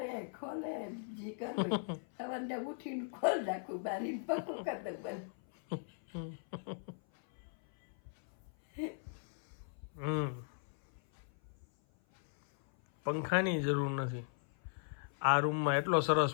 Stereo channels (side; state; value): right; silent; 52 dB below the other